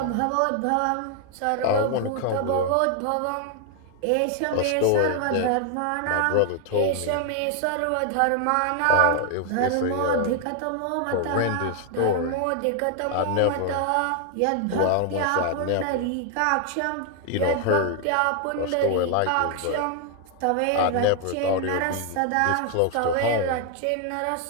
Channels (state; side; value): different; both; correlation 0.00